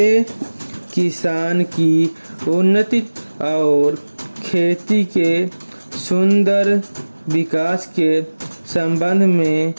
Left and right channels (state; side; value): inverted; both; correlation -1.00